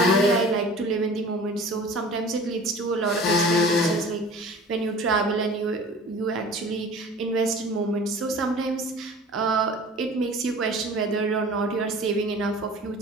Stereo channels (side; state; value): both; normal; correlation 0.43